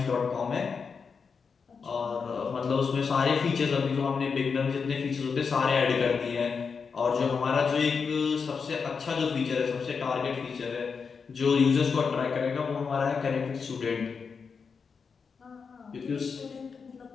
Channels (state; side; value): quieter; right; 5.6 dB